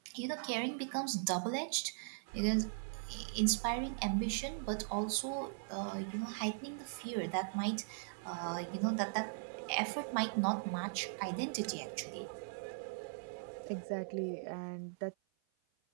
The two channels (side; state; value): left; silent; 51 dB below the other